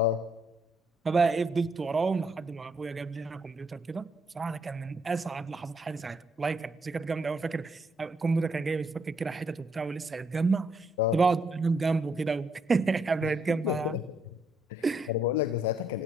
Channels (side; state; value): both; normal; correlation 0.73